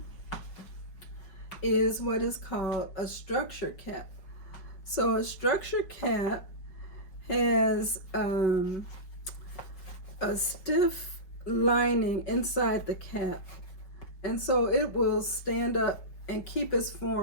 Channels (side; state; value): right; late; 5.6 ms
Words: is what is called a structure cap. So a structure cap has a stiff lining inside the cap, and so it will stand up and keep its